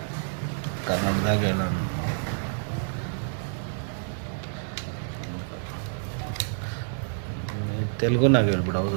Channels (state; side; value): silent; left; digital silence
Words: ಕನ್ನಡದಾಗ ತೆಲುಗುನಾಗ ಹೇಳ್ಬಿಡು.